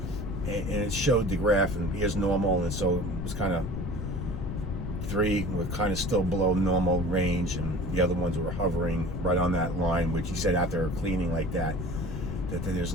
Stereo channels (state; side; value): noise; left; rumble, 5 dB below the sound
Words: and it showed the graph, and here's normal, and so it was kind of 3 were kind of still below normal range, and the other ones were hovering right on that line, which he said after cleaning like that there's